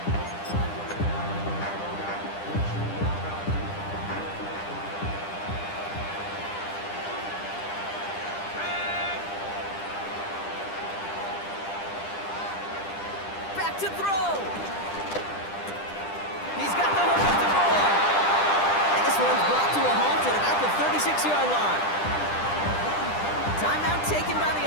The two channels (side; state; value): right; late; 10 ms